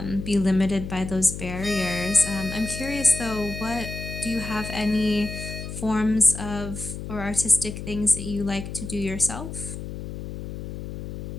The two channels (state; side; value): noise; left; hum, 8 dB below the sound